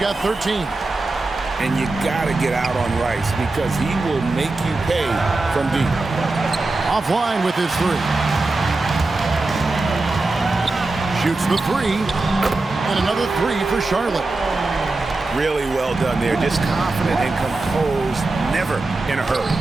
13. And you got to get out on Rice because he will make you pay from deep. Offline with his 3. Shoots the 3. And another 3 for Charlotte. Really well done there. Just confident and composed, never in a hurry.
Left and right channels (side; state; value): left; quieter; 3.2 dB